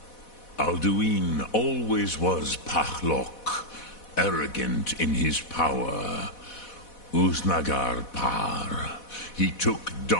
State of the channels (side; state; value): right; late; 4.1 ms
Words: Alduin always was Pachlok, arrogant in his power. Uznagar Par. He took